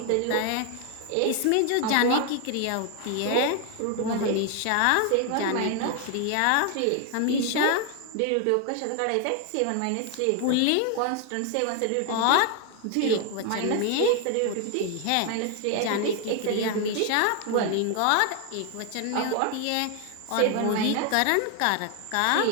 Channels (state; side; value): different; both; correlation 0.01